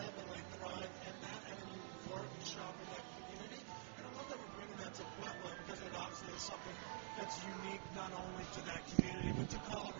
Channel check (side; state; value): left; silent; digital silence